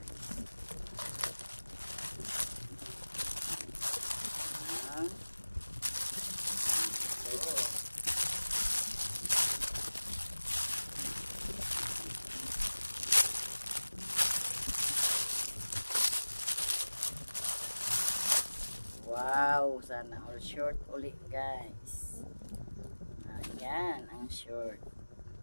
Wow, sana all short ulit guys. Ayan ang short.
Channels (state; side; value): inverted; both; correlation -1.00